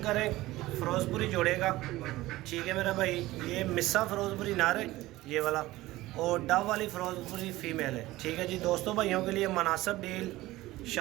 करें, फ़िरोज़पुरी जोड़े का। ठीक है मेरा भाई, ये मिस्सा फ़िरोज़पुरी नार है ये वाला, और डव वाली फ़िरोज़पुरी फ़ीमेल है। ठीक है जी, दोस्तों भाइयों के लिए मुनासिब डील,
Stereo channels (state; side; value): quieter; left; 17.6 dB